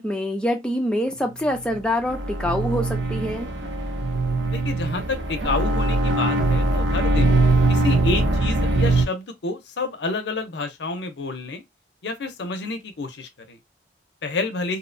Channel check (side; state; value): both; normal; correlation 0.65